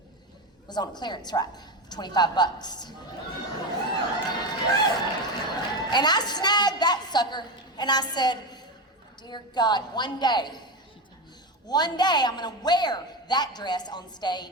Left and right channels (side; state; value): both; normal; correlation 0.17